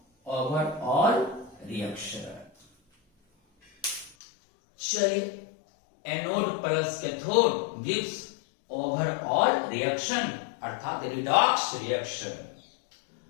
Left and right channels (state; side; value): drops out; right; at 4.2 s